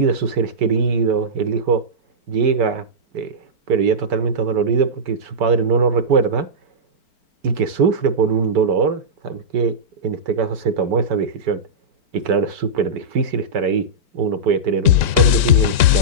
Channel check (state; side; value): late; left; 4.4 ms